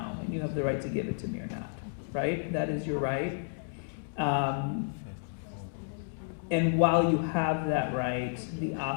and you have the right to give it to me or not, right? That is your right. And while you have that right, the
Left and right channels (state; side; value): silent; right; digital silence